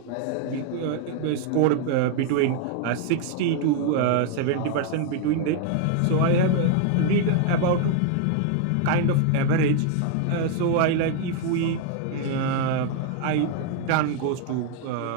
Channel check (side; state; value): both; different; correlation 0.00